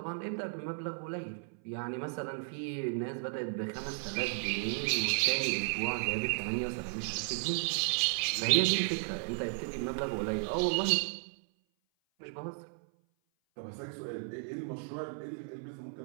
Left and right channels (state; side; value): silent; left; 55 dB below the other